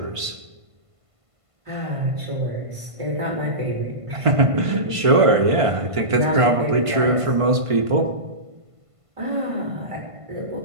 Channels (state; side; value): late; left; 1.5 ms